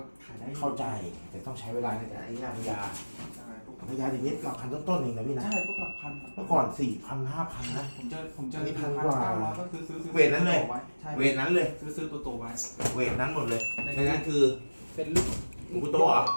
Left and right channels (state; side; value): inverted; both; correlation -1.00